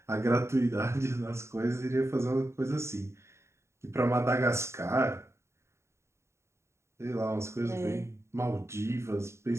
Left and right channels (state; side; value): late; left; 0.13 ms